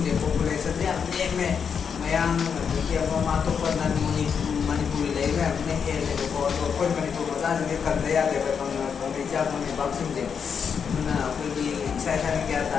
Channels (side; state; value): right; quieter; 6.7 dB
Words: the population niya mayang kaya mamatupad na Manipuri layo na may hele ko ako yung Manipuri masan yung kandaya diba pang medya mo may boxing din na ako yung excited na kaya